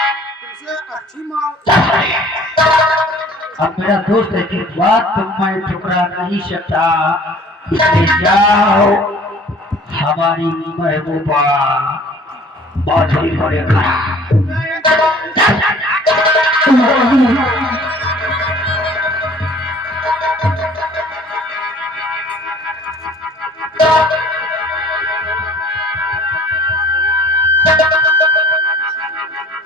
अब मेरा दोस्त की बात मैं ठुकरा नहीं सकता, इसलिए जाओ हमारी महबूबा माधुरी को लेकर।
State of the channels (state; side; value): normal; both; correlation 0.51